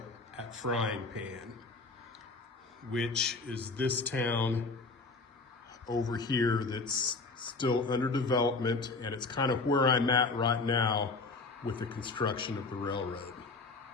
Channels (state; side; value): quieter; right; 3.8 dB